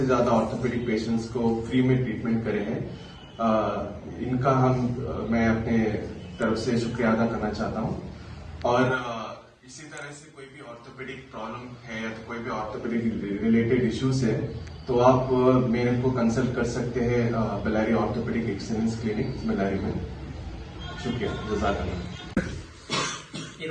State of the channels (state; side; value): identical; both; correlation 1.00